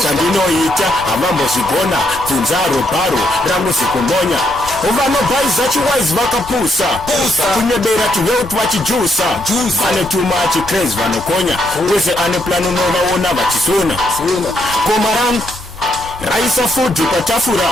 Sandino ita, avamo zibona. Tunzaro baro, rangu sikumbonya. Uvano bai zachi wise vakapusa. Kunyebera kiweut vachijusa. Ane too much craze vanokonya. Weze ane plano nova ona vachisuna. Komarang Raisa food patafura.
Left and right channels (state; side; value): normal; both; correlation 0.76